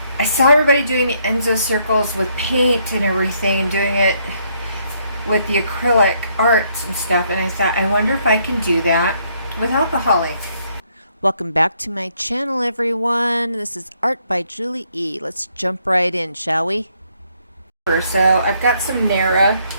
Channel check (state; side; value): inverted; both; correlation -0.71